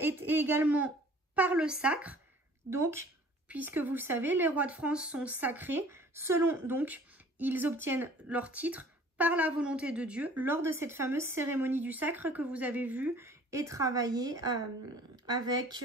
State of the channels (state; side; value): normal; both; correlation 0.51